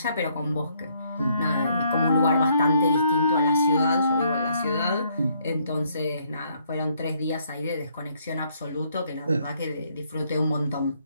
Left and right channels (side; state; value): both; inverted; correlation -0.69